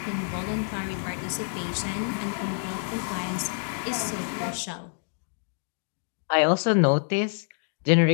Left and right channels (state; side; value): silent; right; 60 dB below the other